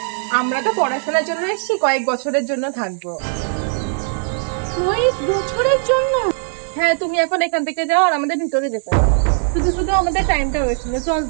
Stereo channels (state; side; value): silent; left; 66 dB below the other